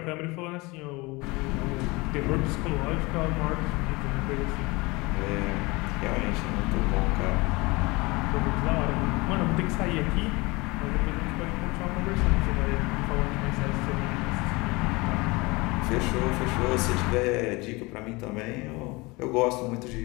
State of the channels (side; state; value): right; quieter; 24.3 dB